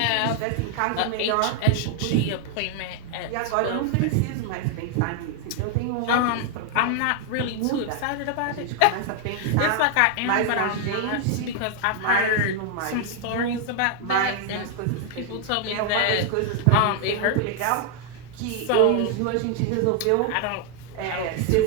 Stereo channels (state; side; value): different; both; correlation 0.00